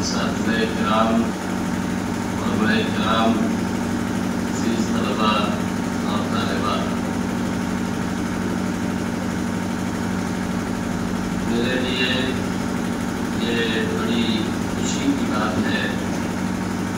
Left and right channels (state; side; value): identical; both; correlation 1.00